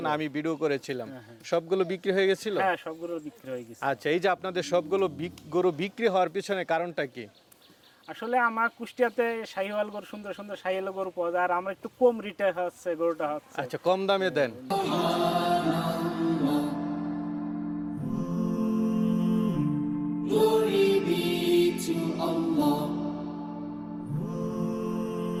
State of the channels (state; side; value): identical; both; correlation 1.00